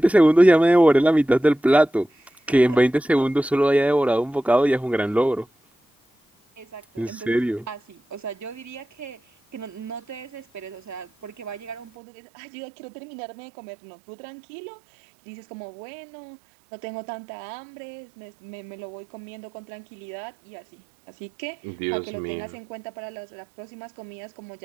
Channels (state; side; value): drops out; left; at 11.9 s